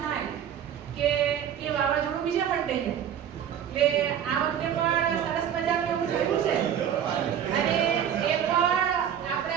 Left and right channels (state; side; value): quieter; left; 9.2 dB